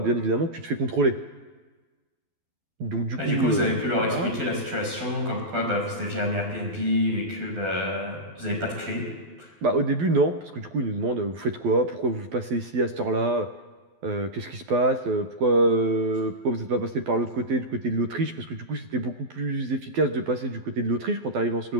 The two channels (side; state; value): left; late; 12 ms